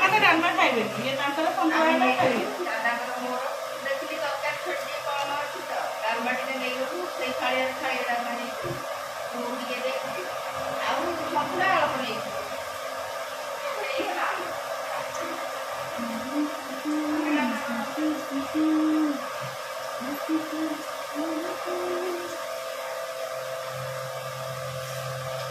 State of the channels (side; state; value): both; identical; correlation 1.00